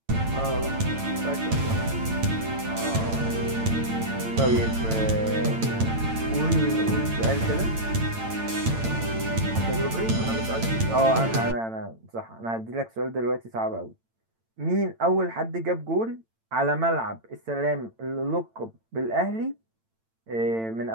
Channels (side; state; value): left; late; 8.9 ms